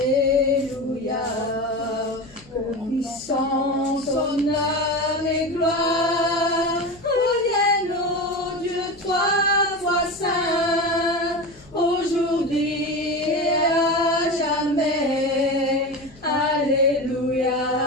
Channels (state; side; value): noise; left; hum, 25 dB below the sound